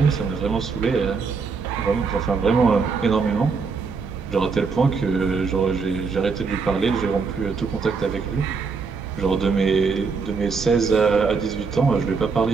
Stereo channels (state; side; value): quieter; left; 4.9 dB